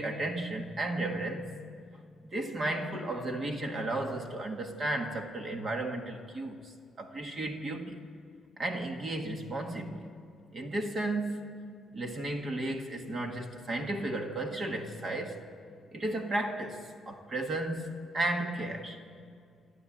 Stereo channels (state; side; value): normal; both; correlation 0.76